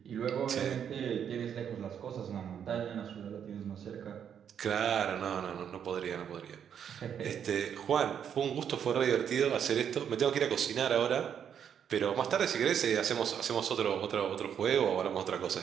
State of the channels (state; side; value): quieter; left; 8.4 dB